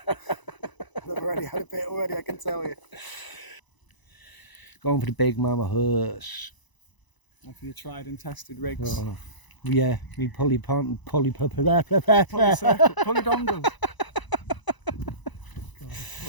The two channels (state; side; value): late; right; 1.0 ms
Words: I've already had a bit already, I can tell you. Going for the big mama huss. And for your tried and tested rigs. Oh, yeah, me pulley Pulley dongle.